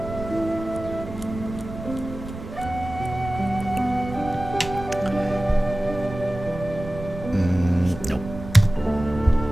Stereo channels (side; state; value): right; noise; rumble, 11 dB below the sound